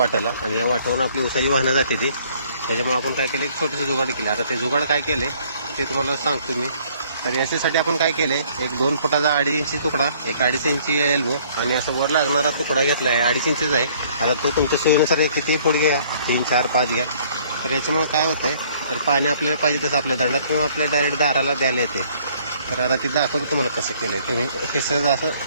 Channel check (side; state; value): both; inverted; correlation -0.60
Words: आणि या वाटावरून आपली उसाची वाहनं जाते ती. त्याच्यामुळे आपण काय केलं, एक छोटंसं जुगाड केलं. आता ते जुगाड काय केले ते तुम्हाला सांगतो मी. तर याच्यासाठी आपण काय केले, एक 2 फुटाचा 2.5 इंची तुकडा, एक 2.5 इंची एल्बो, आणि असं वर लागणारा तुकडा घेतला आहे. 2.5 इंचीचा आहे. आता तो तुमच्या सोयीनुसार किती फूट घ्या, 3, 4, 5 घ्या. तर याच्यामुळे काय होतंय, तर पाणी आपल्याला पाहिजे तसं आपल्या दंडात किंवा आपल्या डायरेक्ट दाराला द्यायला येते. तर आता ते दाखवतो तुम्हाला कसं केलं आहे. तुम्ही हे सहज